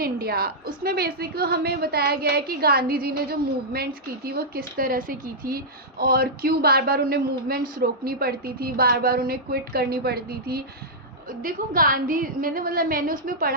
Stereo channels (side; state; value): both; normal; correlation -0.10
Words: इंडिया। उसमें बेसिक हमें बताया गया है कि गांधी जी ने जो मूवमेंट्स की थी वो किस तरह से की थी और क्यों बार बार उन्हें मूवमेंट्स रोकनी पड़ती थी, बार बार उन्हें क्विट करनी पड़ती थी। देखो, गांधी मैंने उसमें